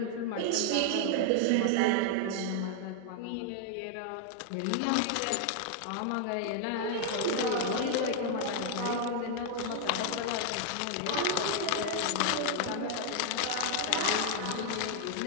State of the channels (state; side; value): different; both; correlation 0.00